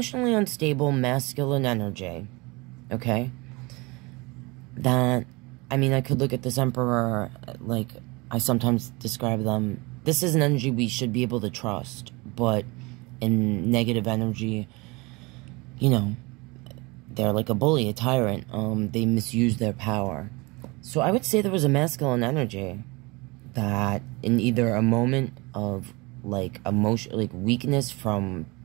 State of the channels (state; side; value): quieter; left; 25.5 dB